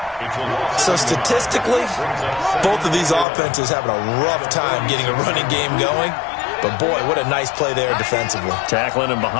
So statistically, both of these offenses having a rough time getting a running game going. But boy, what a nice play there defensively. Tackling him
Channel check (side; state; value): right; drops out; at 3.2 s